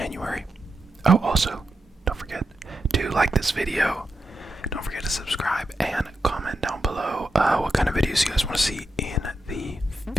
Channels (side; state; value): both; normal; correlation 0.87